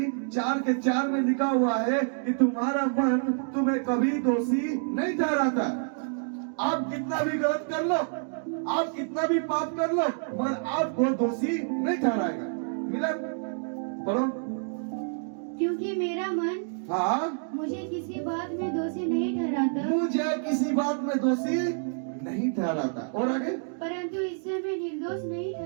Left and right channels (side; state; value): left; silent; digital silence